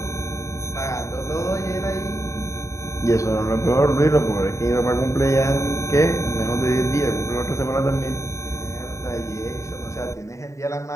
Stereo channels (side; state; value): right; late; 0.15 ms